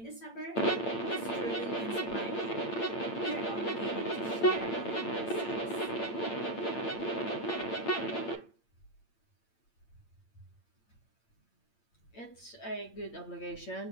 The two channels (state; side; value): late; right; 8.8 ms